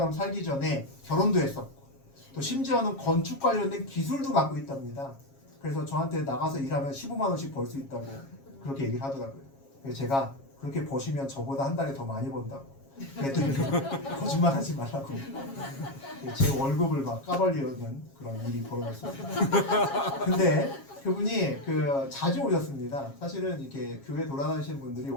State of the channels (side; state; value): right; late; 7.3 ms